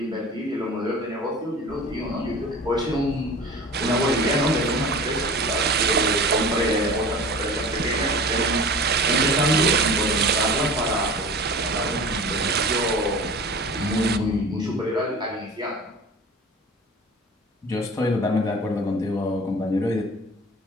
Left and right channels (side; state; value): both; normal; correlation 0.38